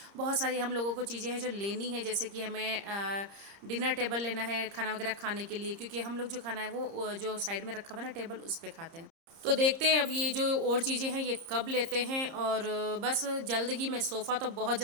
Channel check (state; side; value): late; left; 30 ms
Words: बहुत सारी हम लोगों को चीज़ें हैं जो लेनी है। जैसे कि हमें डिनर टेबल लेना है खाना वगैरह खाने के लिए, क्योंकि हम लोग जो खाना है वो जो साइड में रखा हुआ है ना टेबल, उस पर खाते हैं। तो देखते हैं अब ये जो और चीज़ें हैं ये कब लेते हैं। और बस जल्द ही मैं सोफ़ा तो बहुत